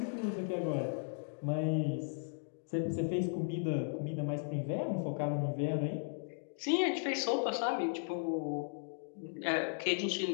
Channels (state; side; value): silent; right; digital silence